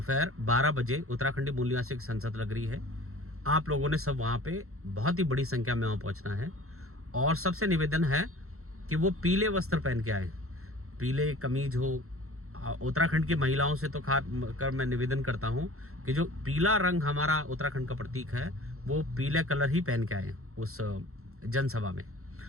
12 बजे उत्तराखंडी मूल निवासियों की संसद लग रही है। आप लोगों ने सब वहाँ पे बहुत ही बड़ी संख्या में वहाँ पहुँचना है और सबसे निवेदन है कि वो पीले वस्त्र पहन के आए, पीले कमीज हो। उत्तराखंड की महिलाओं से तो खास कर मैं निवेदन करता हूँ कि जो पीला रंग हमारा उत्तराखंड का प्रतीक है वो पीले कलर ही पहन के आए उस जनसभा में।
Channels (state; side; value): late; left; 0.63 ms